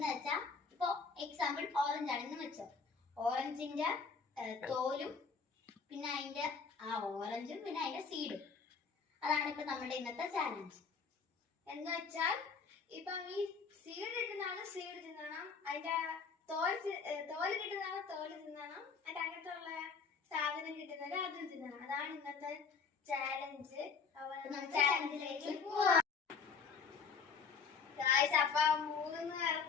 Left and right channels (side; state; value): right; quieter; 5.3 dB